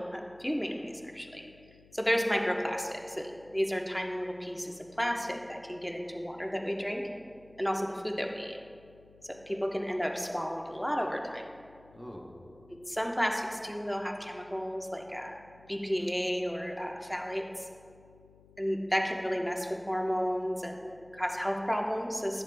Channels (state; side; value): noise; left; hum, 25 dB below the sound